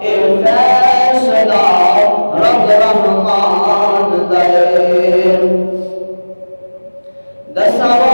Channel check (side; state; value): both; inverted; correlation -1.00